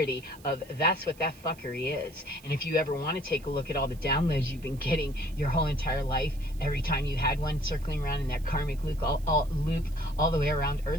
of that's what that fuckery is. And if you ever want to take a look at all the downloads you've been getting your whole entire life, every time you had one circling around in that karmic loop all the way around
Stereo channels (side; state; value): right; noise; hiss, 24 dB below the sound